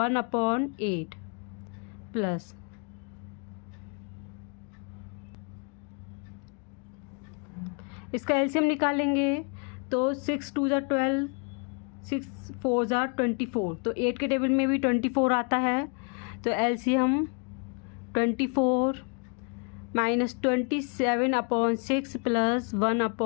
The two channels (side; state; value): right; quieter; 38.7 dB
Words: प्लस। इसका एलसीएम निकालेंगे। तो 6 2 ज़ा 12, 6 4 ज़ा 24, तो 8 के टेबल में भी 24 आता है। तो एलसीएम 24 -27/6 प्लस